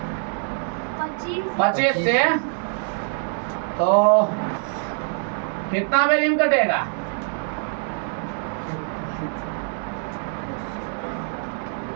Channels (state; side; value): silent; left; 56 dB below the other